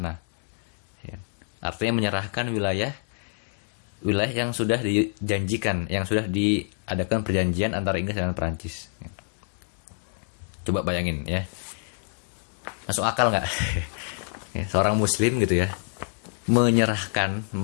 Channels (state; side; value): silent; right; 56 dB below the other